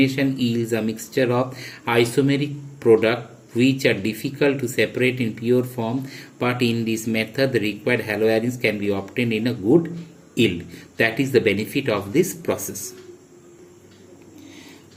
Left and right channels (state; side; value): identical; both; correlation 1.00